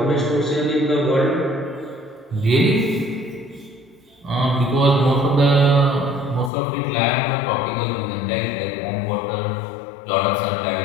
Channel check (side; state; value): right; drops out; at 6.5 s